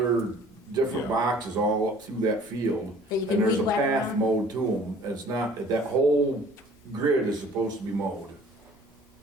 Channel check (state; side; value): normal; both; correlation 0.52